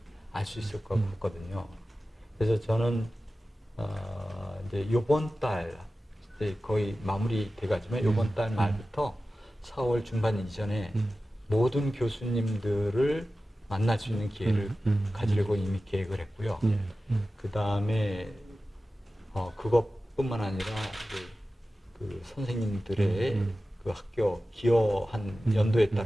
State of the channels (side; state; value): both; normal; correlation 0.95